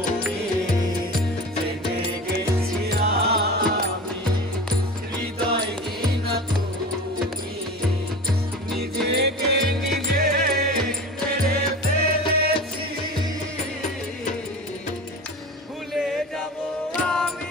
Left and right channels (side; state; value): both; normal; correlation 0.33